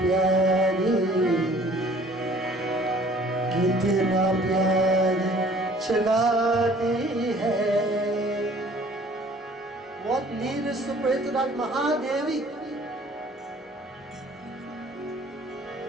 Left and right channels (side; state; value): both; normal; correlation 0.54